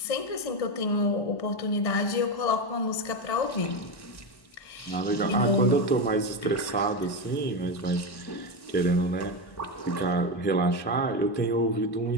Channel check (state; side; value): late; right; 1.1 ms